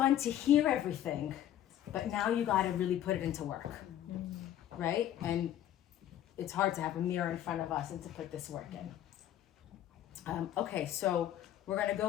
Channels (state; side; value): quieter; right; 11.6 dB